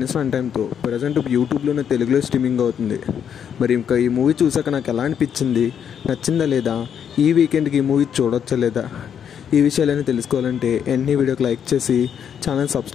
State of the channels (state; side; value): quieter; right; 8.3 dB